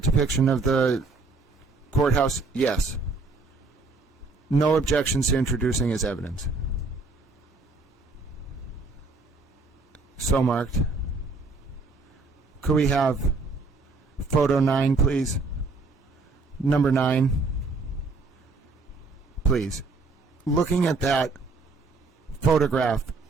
depiction of the courthouse? Yes. No objections to introducing as evidence. So marked. Could we have photo 9, please? Number 9. Please. Looking at that photograph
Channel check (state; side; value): quieter; left; 3.8 dB